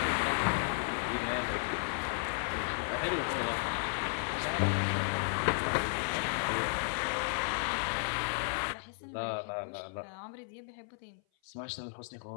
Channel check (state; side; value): silent; right; 55 dB below the other